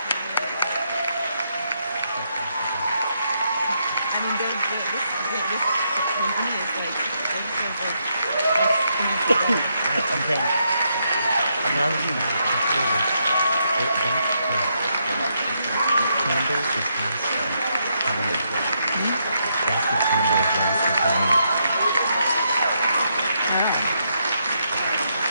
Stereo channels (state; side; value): inverted; both; correlation -0.78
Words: I mean, this company is like, I'm saying, I'm not really mad. Candle is lasting. That's the candle is lasting for me.